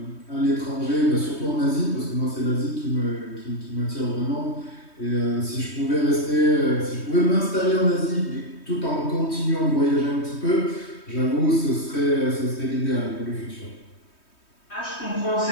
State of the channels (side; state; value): right; late; 3.2 ms